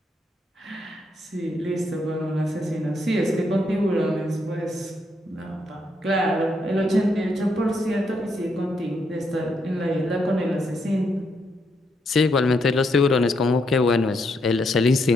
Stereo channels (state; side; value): normal; both; correlation 0.77